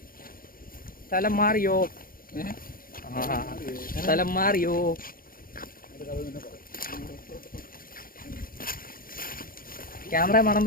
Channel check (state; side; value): late; right; 0.42 ms